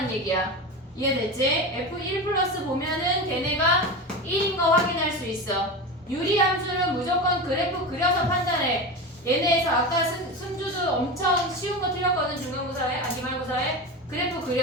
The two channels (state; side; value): normal; both; correlation 0.24